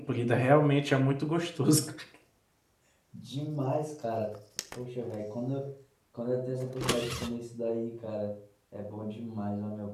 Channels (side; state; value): both; identical; correlation 1.00